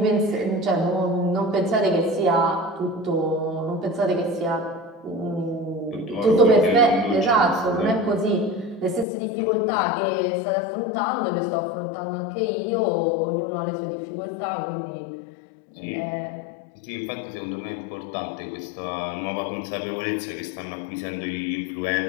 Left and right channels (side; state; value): right; drops out; at 9.1 s